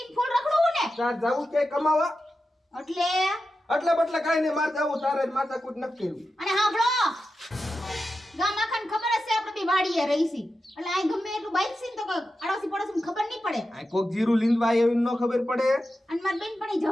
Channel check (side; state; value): both; normal; correlation 0.91